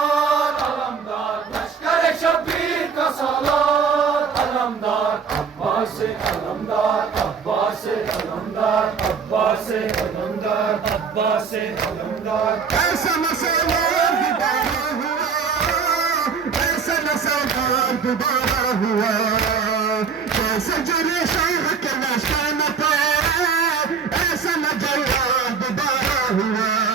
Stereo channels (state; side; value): quieter; left; 5.9 dB